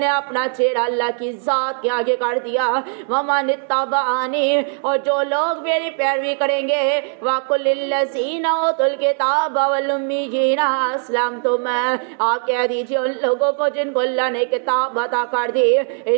نے اپنا چہرہ اللہ کی ذات کے آگے کر دیا، وَمَنِ اتَّبَعَنِي، اور جو لوگ میری پیروی کریں گے، وَقُلْ لِلَّذِينَ أُوتُوا الْكِتَابَ وَالْأُمِّيِّينَ أَسْلَمْتُمْ، آپ کہہ دیجئے ان لوگوں کو جن کو اللہ نے کتاب عطا کر دی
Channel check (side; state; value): left; silent; 55 dB below the other